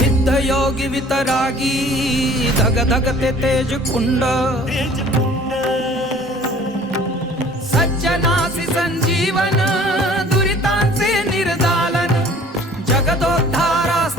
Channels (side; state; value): both; normal; correlation 0.51